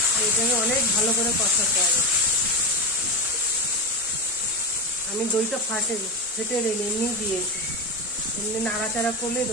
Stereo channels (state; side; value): normal; both; correlation 0.18